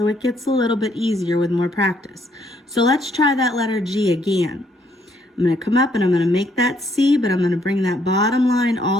it gets a little bit easier with more practice. So let's try that letter G again. I'm going to come up and I'm going to make that C, but I'm going to bring that bottom line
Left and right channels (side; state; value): both; normal; correlation 0.70